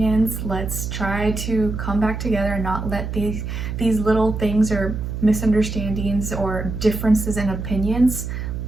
Let's try to come back together and not let these little things or misunderstandings or differences in opinions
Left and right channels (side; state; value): right; noise; hum, 5 dB below the sound